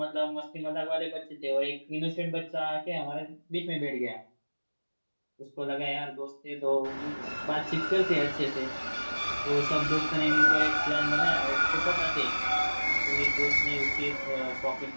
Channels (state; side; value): inverted; both; correlation -1.00